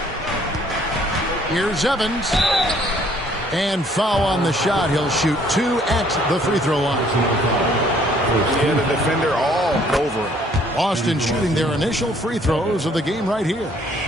Here's Evans. And foul on the shot. He'll shoot 2 at the free throw line. Yeah, the defender all over it. Boston shooting their initial free throws of the game right here.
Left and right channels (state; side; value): normal; both; correlation 0.62